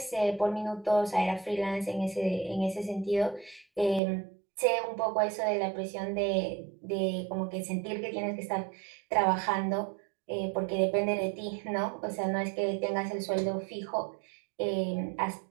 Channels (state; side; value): drops out; left; at 4.0 s